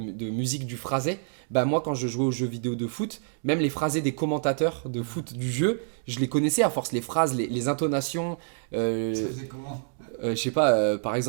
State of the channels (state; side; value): silent; left; digital silence